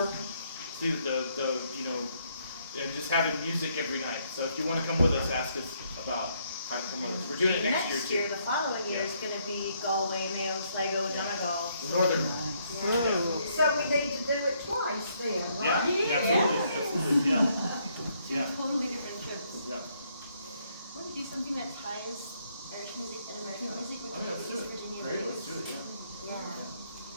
to the and just having music every night. So if you want to come with us, ask us about how to come with us. We're doing it next year too. The following year is going to be Galway, Mayo, Sligo, Donegal. The northern. So we need to do it twice then, Yeah, right? absolutely, yeah. Yeah. Totally different trips. Yeah. Want to do something that ties Irish music and American music with Oh, yeah, let's do East it. Virginia Great, blues? let's do it, yeah. Yeah.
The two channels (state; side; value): inverted; both; correlation -0.71